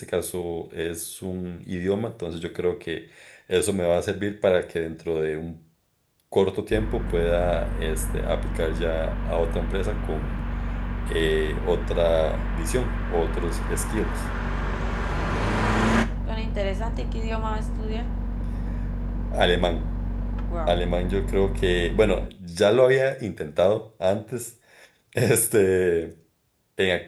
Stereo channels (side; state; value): both; identical; correlation 1.00